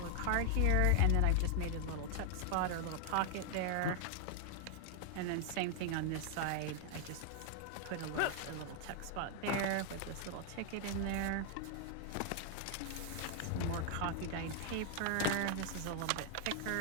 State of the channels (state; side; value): different; both; correlation 0.00